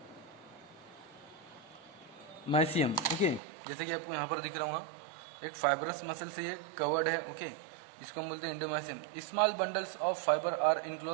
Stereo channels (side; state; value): left; drops out; at 3.4 s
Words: ओके, जैसे कि आपको यहाँ पर दिख रहा हूँ एक फाइब्रस मसल से ये कवर्ड है। ओके, जिसको हम बोलते हैं endomysium. Small bundles of fibre are